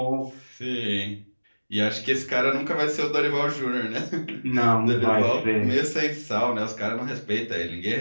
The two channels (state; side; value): inverted; both; correlation -1.00